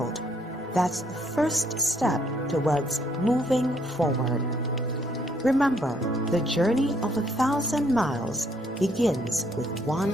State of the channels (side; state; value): both; normal; correlation 0.68